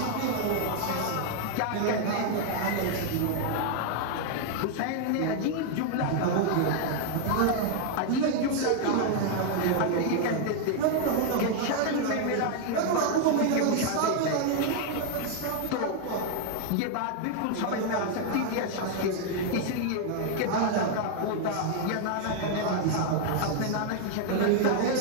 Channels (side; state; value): both; different; correlation 0.00